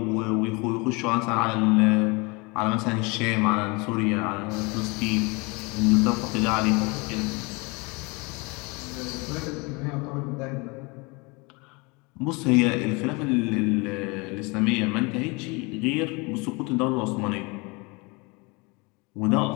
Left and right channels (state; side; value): quieter; right; 27.8 dB